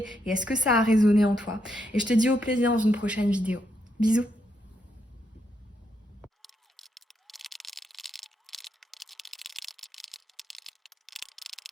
et est-ce que ça a résonné en toi. Et je te dis au plaisir dans une prochaine vidéo. Bisous.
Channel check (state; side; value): normal; both; correlation 0.79